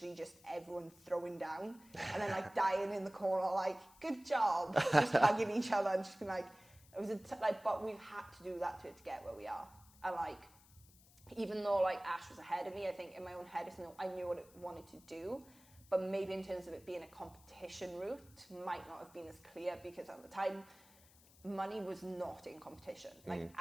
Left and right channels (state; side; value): noise; left; hiss, 25 dB below the sound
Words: just everyone throwing down and then like dying in the corner, like, good job, just hugging each other and just being like, it was but we've had to do that to get where we are. And like, even though like Ash was ahead of me, I think in my own head I knew what it wanted to do, but maybe in terms of it being a competition route might not have been as clear, because at the time money was not in competition